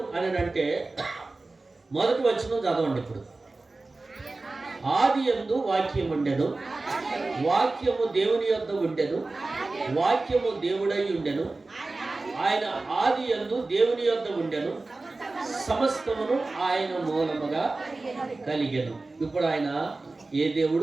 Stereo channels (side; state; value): left; quieter; 3.3 dB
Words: అని అంటే మొదటి వచనం చదవండి. ఇప్పుడు ఆది యందు వాక్యం ఉండెను, వాక్యము దేవుని యొద్ద ఉండెను, వాక్యము దేవుడై ఉండెను, ఆయన ఆది యందు దేవుని యొద్ద ఉండెను, సమస్తమును ఆయన మూలముగా కలిగెను. ఇప్పుడు ఆయన ఏ